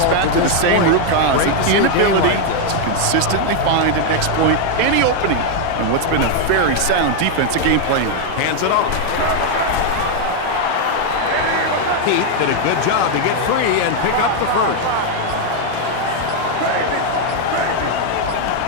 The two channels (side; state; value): both; different; correlation 0.00